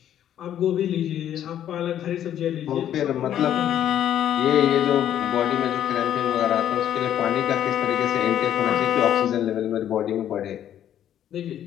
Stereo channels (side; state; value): right; quieter; 10.7 dB